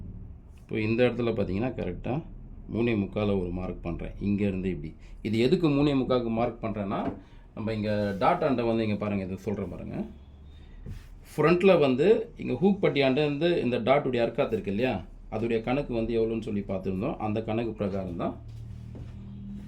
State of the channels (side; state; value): both; identical; correlation 1.00